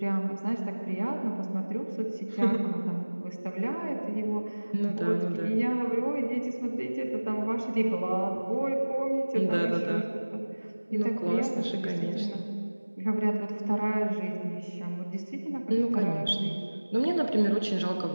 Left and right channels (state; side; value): inverted; both; correlation -1.00